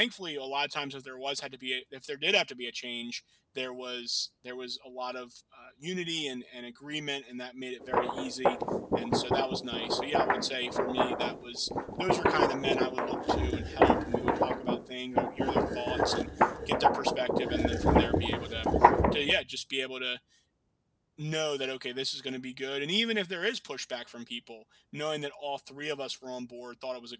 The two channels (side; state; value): both; identical; correlation 1.00